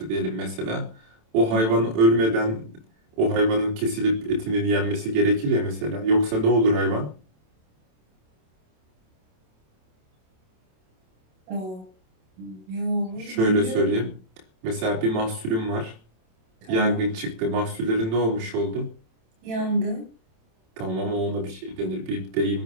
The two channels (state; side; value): late; left; 27 ms